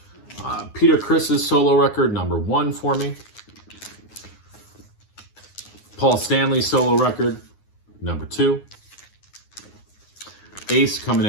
Peter Criss's solo record, number 1 for me. Paul Stanley's solo record, number 2. Ace coming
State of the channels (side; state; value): right; late; 9.7 ms